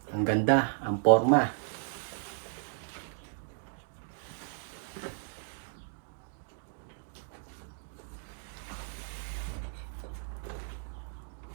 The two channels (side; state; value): left; silent; 55 dB below the other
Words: Ang ganda, ang forma.